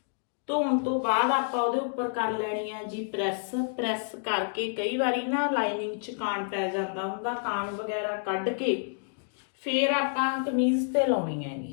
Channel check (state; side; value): silent; right; digital silence